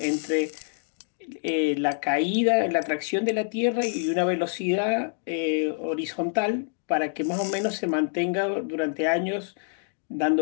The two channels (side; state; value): right; silent; digital silence